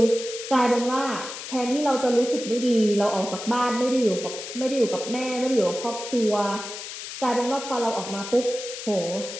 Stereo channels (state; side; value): noise; left; hiss, 9 dB below the sound